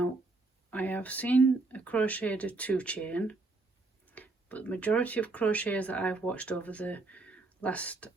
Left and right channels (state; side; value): quieter; left; 3.4 dB